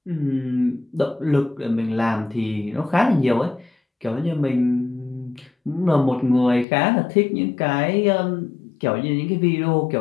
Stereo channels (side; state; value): right; drops out; at 6.7 s